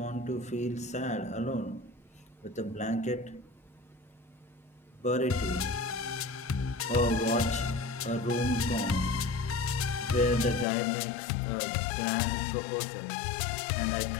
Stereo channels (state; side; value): drops out; right; at 10.7 s